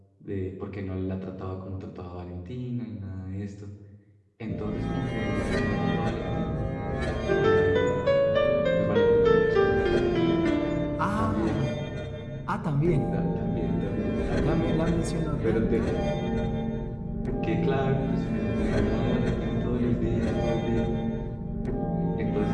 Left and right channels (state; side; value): identical; both; correlation 1.00